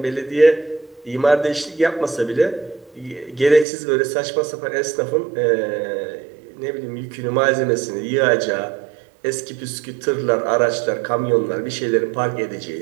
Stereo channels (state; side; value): drops out; left; at 3.7 s